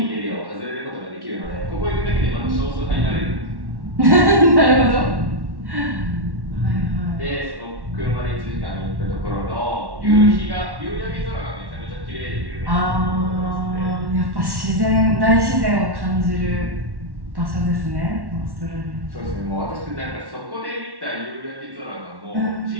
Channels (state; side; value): late; left; 1.1 ms